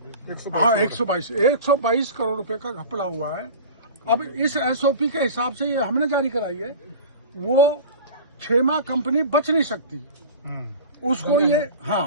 122 करोड़ रुपए का घपला हुआ है। अब इस एसओपी के हिसाब से ये हमने जारी कराई है, वो क्षेमा कंपनी बच नहीं सकती उसको। ये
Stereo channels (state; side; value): inverted; both; correlation -0.35